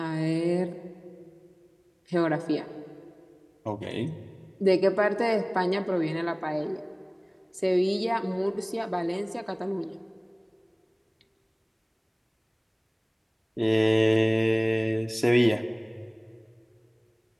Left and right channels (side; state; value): both; identical; correlation 1.00